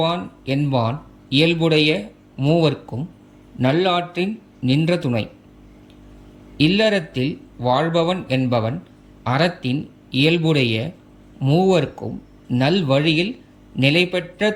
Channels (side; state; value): both; identical; correlation 1.00